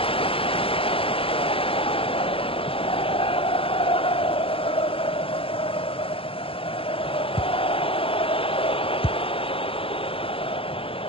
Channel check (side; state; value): right; late; 0.27 ms